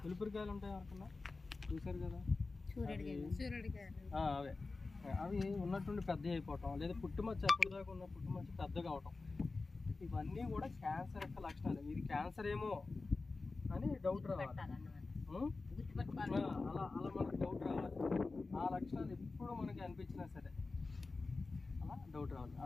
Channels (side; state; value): right; quieter; 3.8 dB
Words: పులిపిరికాయలు ఉంటాయి ఎవరికన్నా చూసారు కదా, అవే అవి ఉన్నట్టుండి పెద్దవి అయిపోవటం, లేదా పుట్టుమచ్చ ఎప్పటిదాకా ఉన్న పుట్టుమచ్చ పెద్దగా అవటం. ఇవన్నీ కూడా క్యాన్సర్ యొక్క లక్షణాలు. ఇది క్యాన్సర్ ఏమో అని డౌట్ రావాలి. అలా అలా మనకు డౌట్ రావాలి. ఆ లక్షణాలు ఎప్పుడు మనకి అనిపించినా సరే అలా డౌట్ రావాలి.